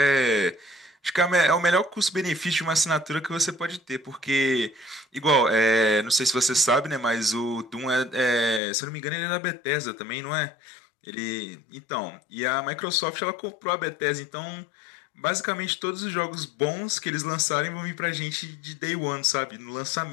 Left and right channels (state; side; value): drops out; right; at 8.6 s